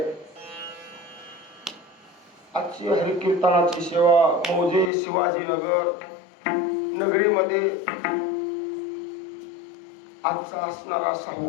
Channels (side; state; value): right; drops out; at 4.9 s